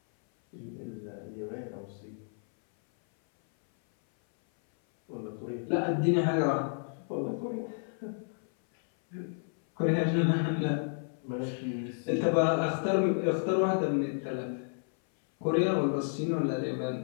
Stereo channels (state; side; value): silent; right; 57 dB below the other